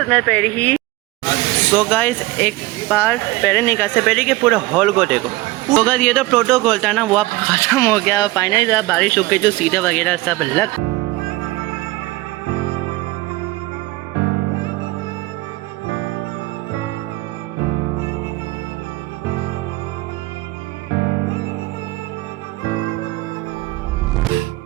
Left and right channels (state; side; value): quieter; left; 20.0 dB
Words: मिनट पहले ही। तो गाइस एक बार पहले निकाल से पहले के पूरे हॉल को देखो। तो गाइस ये तो प्रोटोकॉल था ना, वो अब ख़त्म हो गया। फाइनली बारिश हो गई, जो सीधे वगैरह सब लग।